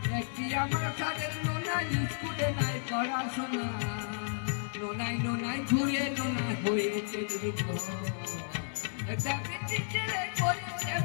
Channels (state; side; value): silent; right; digital silence